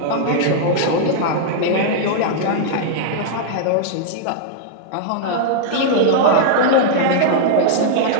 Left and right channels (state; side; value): different; both; correlation -0.01